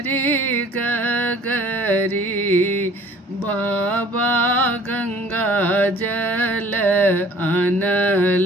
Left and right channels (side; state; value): both; normal; correlation 0.52